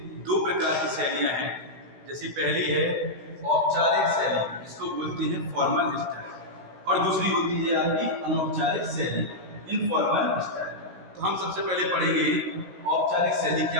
दो प्रकार की शैलियाँ हैं। जैसी पहली है औपचारिक शैली, जिसको बोलते हैं फॉर्मल स्टाइल, और दूसरी होती है आपकी अनौपचारिक शैली, इनफॉर्मल स्टाइल। तो हम सबसे पहले पढ़ेंगे औपचारिक शैली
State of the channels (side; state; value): left; late; 16 ms